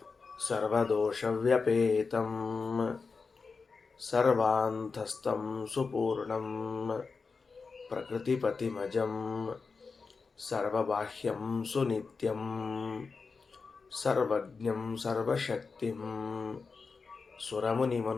ಸರ್ವದೋಷವ್ಯಪೇತಂ ಸರ್ವಾಂತಸ್ಥಂ ಸುಪೂರ್ಣಂ ಪ್ರಕೃತಿಪತಿಮಜಂ ಸರ್ವಬಾಹ್ಯಂ ಸುನಿತ್ಯಂ ಸರ್ವಜ್ಞಂ ಸರ್ವಶಕ್ತಿಂ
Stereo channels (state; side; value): quieter; right; 4.7 dB